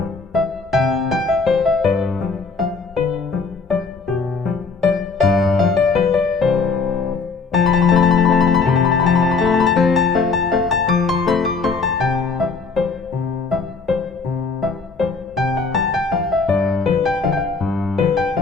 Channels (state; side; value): quieter; right; 4.6 dB